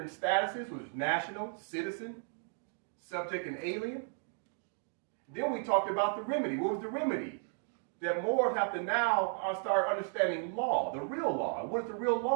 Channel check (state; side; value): silent; left; 55 dB below the other